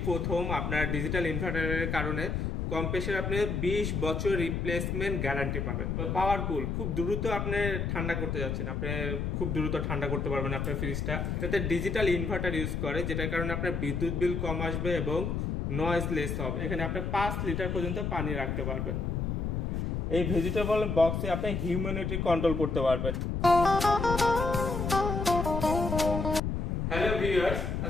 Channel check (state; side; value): noise; left; rumble, 1 dB below the sound